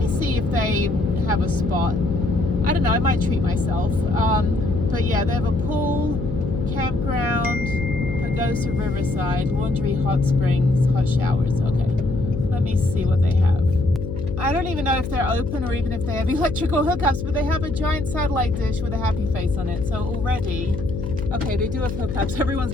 see if they have a spot. I don't know, I might treat myself. But yeah, they have a pool, campground, Pagosa Riverside, laundry, hot springs, hot showers. Okay, let me see what they have. I don't even know if they're open or even if they have electrical hookups, but they have a giant satellite dish with a happy face on it. So already, okay, they do have hookups. Everyone's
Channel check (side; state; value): left; noise; hum, 6 dB below the sound